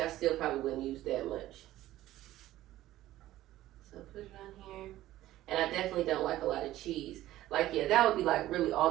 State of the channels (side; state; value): left; quieter; 14.9 dB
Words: still probably wouldn't use that much. So put it on here, and I definitely don't like a lot of cheese. Like, yeah, that would be like really all